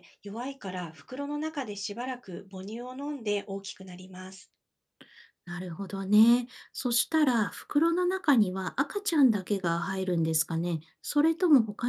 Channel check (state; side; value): identical; both; correlation 1.00